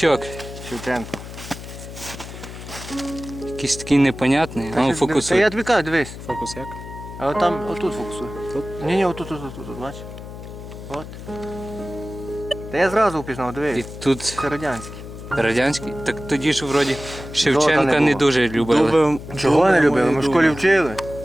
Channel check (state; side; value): noise; left; hum, 12 dB below the sound